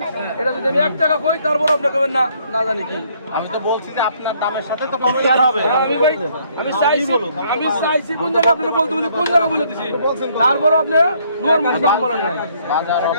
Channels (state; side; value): inverted; both; correlation -0.66